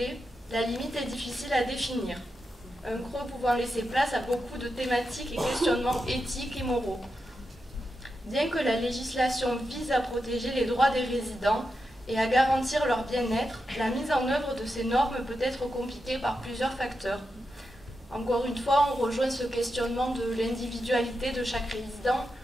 la limite est difficile à définir, un creux pouvant laisser place à beaucoup de thématiques et questionnements éthiques et moraux. Bien que la législation vise à protéger les droits des résidents et à garantir leur bien-être, la mise en œuvre de ces normes peut être compliquée par plusieurs facteurs. Encore une fois, on rejoint ce questionnement de l'individualité de chaque résident,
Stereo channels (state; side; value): normal; both; correlation 0.88